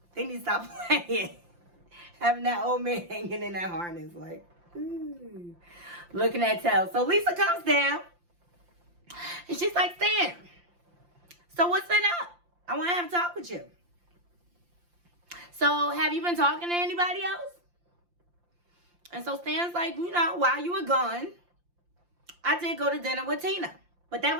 Having that old man hanging in that harness like, ooh. Looking at tail. So Lisa comes down. And she's like, Stan, so what's been up? I want to have a talk with you. So have you been talking to anybody else? And so Stan's like, while you were gone, I did go to dinner with Tina. But that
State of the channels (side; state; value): left; late; 5.7 ms